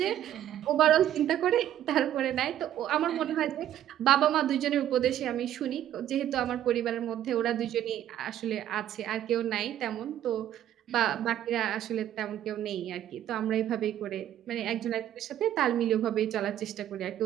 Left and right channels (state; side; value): quieter; left; 11.5 dB